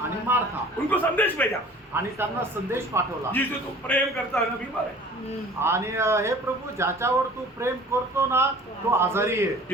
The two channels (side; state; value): both; normal; correlation 0.47